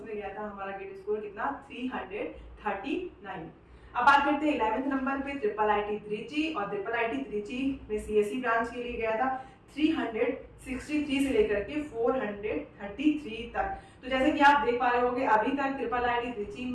गया था हमारा गेट स्कोर कितना 339। अब बात करते हैं 11th नंबर पे ट्रिपल आईटी त्रिची, और ट्रिपल आईटी त्रिची में सीएससी ब्रांच के लिए गया था 363 से लेकर के 433 तक। तो जैसे कि आप देख पा रहे होंगे अभी तक ट्रिपल आईटी त्रिची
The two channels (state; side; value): identical; both; correlation 1.00